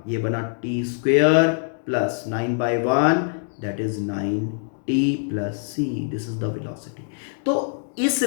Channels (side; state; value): right; silent; digital silence